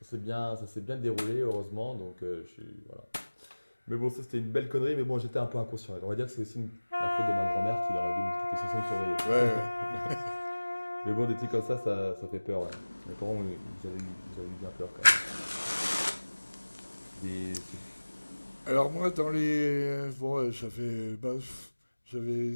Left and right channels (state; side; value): inverted; both; correlation -1.00